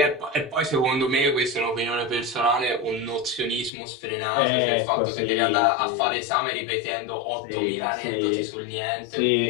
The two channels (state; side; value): drops out; right; at 3.7 s